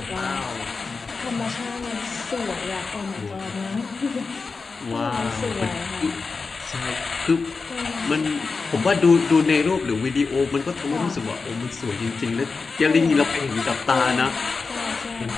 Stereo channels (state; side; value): quieter; right; 4.4 dB